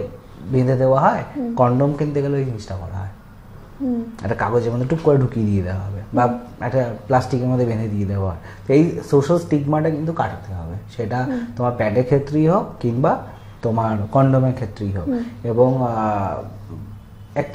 বেঁধে দেওয়া হয়, কন্ডোম কিনতে গেলে ওই জিনিসটা করা হয়, একটা কাগজের মধ্যে টুক করে ঢুকিয়ে দিয়ে দেওয়া হবে বা একটা প্লাস্টিকের মধ্যে বেঁধে দিয়ে দেওয়া হয়। তো এই সোশ্যাল স্টিগমাটা কিন্তু কাটাতে হবে, সেটা তোমার প্যাডের ক্ষেত্রেই হোক কিংবা তোমার কন্ডোমের ক্ষেত্রেই হোক। এবং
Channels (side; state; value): both; identical; correlation 1.00